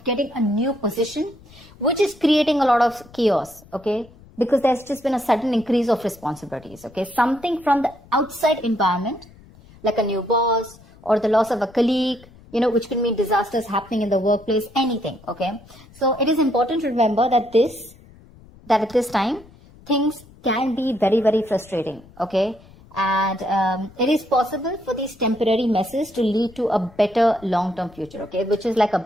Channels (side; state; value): left; noise; rumble, 24 dB below the sound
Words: getting a new position, which is creating a lot of chaos, okay, because there's just been a sudden increase of responsibilities, okay, something from the outside environment, like a new boss or the loss of a colleague, which can mean disasters happening in the workplace, anything, okay? So it is important to remember that at this time, things can be very, very frustrating, okay? And it is possible for these temporary messes to lead to a better long-term future, okay? Which is like a